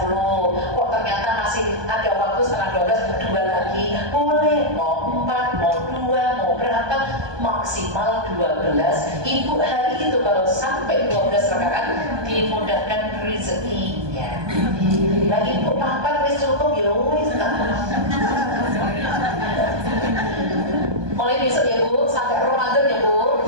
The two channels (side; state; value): left; late; 1.2 ms